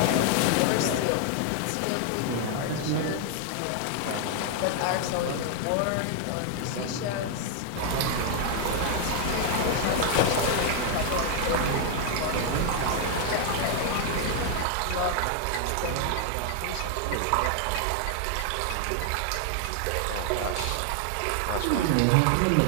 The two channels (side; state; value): both; different; correlation 0.00